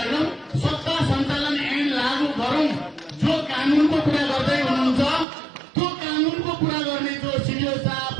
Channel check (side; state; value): left; drops out; at 5.2 s